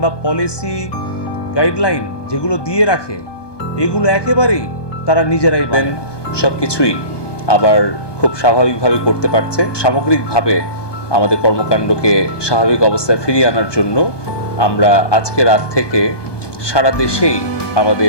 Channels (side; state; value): right; late; 1.2 ms